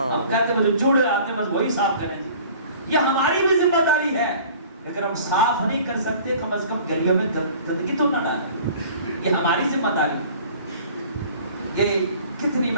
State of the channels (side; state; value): both; inverted; correlation -0.47